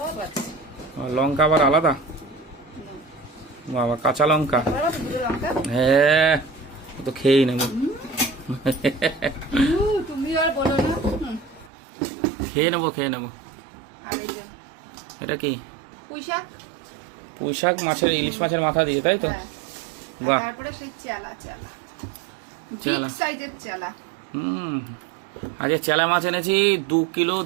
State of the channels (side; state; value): left; drops out; at 11.7 s